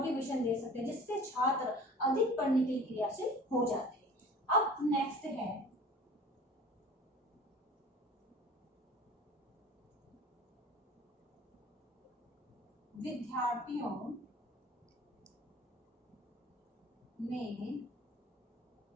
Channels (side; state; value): both; normal; correlation 0.44